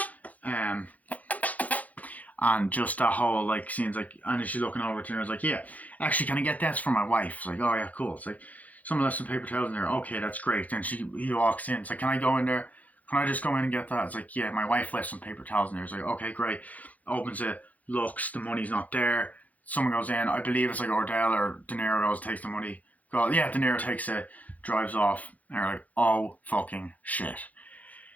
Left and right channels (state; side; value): late; right; 0.076 ms